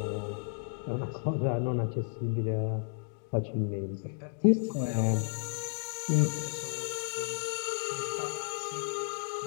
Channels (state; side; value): silent; right; 56 dB below the other